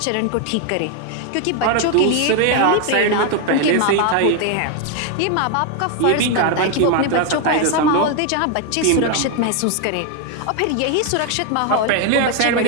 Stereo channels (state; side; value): different; both; correlation 0.01